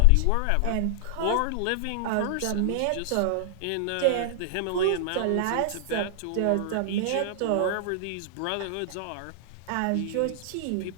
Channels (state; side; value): different; both; correlation -0.01